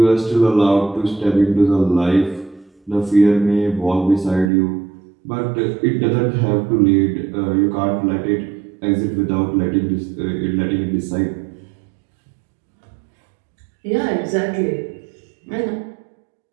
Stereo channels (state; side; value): drops out; left; at 4.5 s